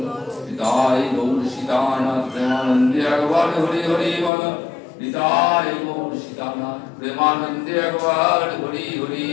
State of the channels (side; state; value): right; drops out; at 4.3 s